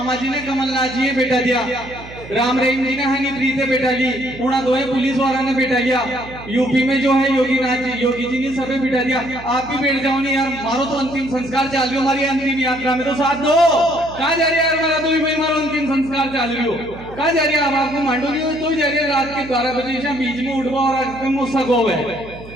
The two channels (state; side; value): noise; right; hum, 16 dB below the sound